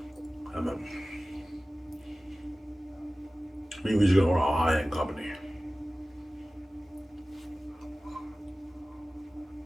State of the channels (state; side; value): normal; both; correlation 0.97